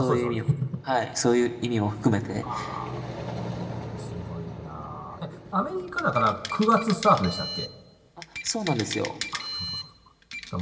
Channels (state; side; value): identical; both; correlation 1.00